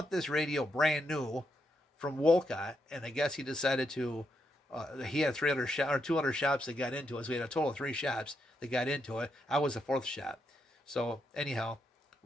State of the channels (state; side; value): normal; both; correlation 0.81